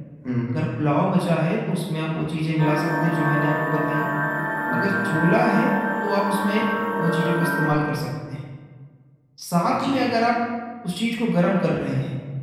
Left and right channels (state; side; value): identical; both; correlation 1.00